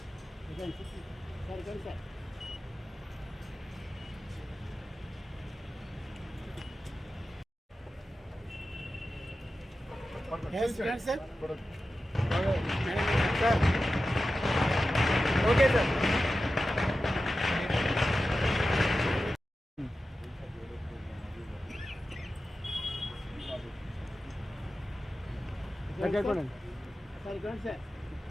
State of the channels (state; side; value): normal; both; correlation 0.93